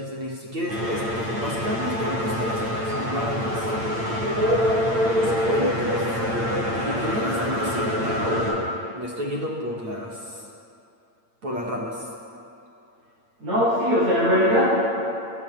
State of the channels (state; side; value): late; left; 8.8 ms